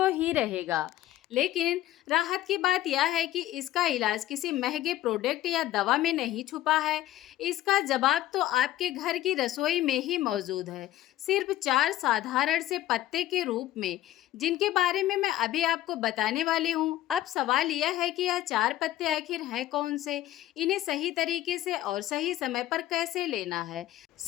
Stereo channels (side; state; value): right; quieter; 14.2 dB